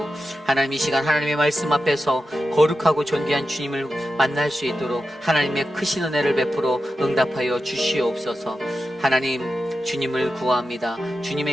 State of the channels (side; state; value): both; normal; correlation 0.90